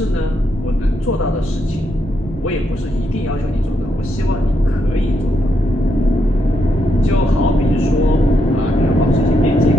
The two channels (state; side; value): normal; both; correlation 0.80